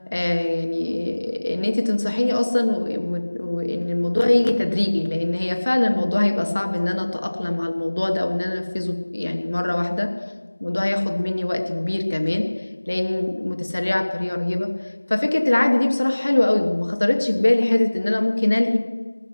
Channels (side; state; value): both; inverted; correlation -1.00